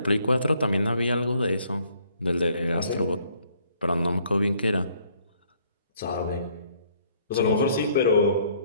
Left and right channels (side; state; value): both; inverted; correlation -0.64